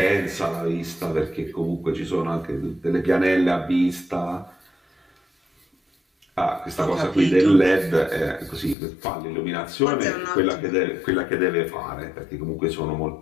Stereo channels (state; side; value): drops out; right; at 8.8 s